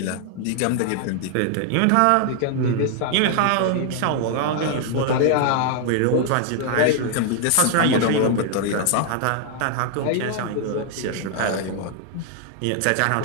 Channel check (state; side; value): different; both; correlation 0.00